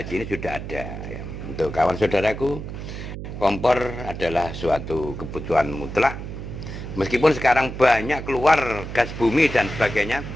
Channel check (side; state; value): right; noise; hum, 8 dB below the sound